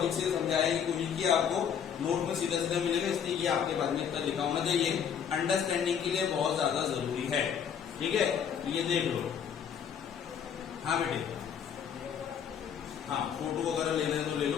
से समझाने की कोशिश की, आपको नोट में सीधा सीधा मिलेगा, इसलिए ये आपके पास में इतना लिखा होना चाहिए, अंडरस्टैंडिंग के लिए बहुत ज्यादा जरूरी है, ठीक है। ये देख लो, हाँ बेटे, हाँ फोटो वगैरह लेना है तो ले लो,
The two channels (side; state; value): right; quieter; 7.9 dB